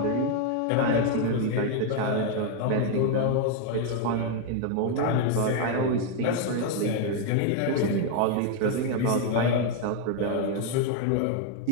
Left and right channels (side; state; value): both; different; correlation 0.01